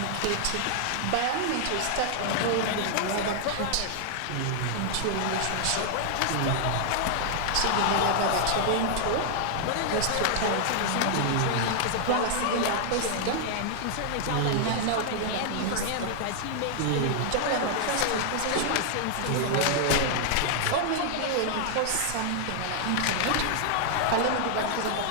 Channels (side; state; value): both; different; correlation -0.01